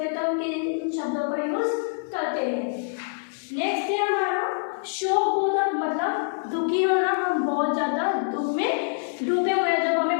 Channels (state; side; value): silent; right; digital silence